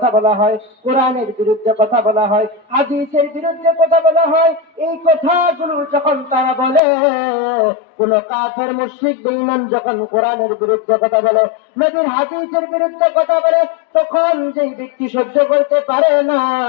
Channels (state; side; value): drops out; right; at 6.8 s